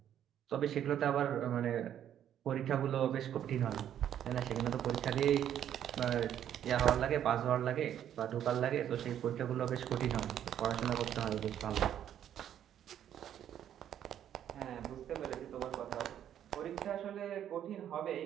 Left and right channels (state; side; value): quieter; left; 10.3 dB